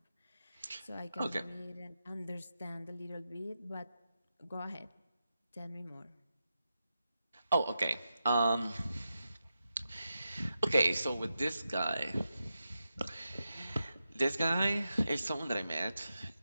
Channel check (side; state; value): both; inverted; correlation -0.89